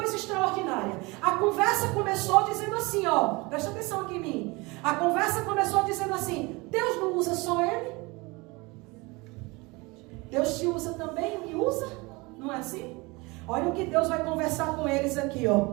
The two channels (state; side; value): quieter; left; 25.0 dB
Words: extraordinária. A conversa começou dizendo assim, presta atenção aqui em mim. A conversa começou dizendo assim, Deus não usa só ele? Deus te usa também e me usa? Não é assim? Olha o que Deus vai conversar com eles aqui,